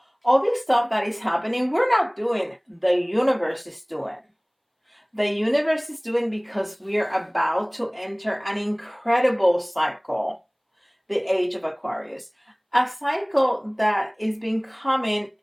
All this stuff that is happening, we're not doing. The universe is doing. The universe is doing because we're about to enter an incredible cycle, the age of Aquarius. A cycle that is been coming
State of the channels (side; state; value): both; identical; correlation 1.00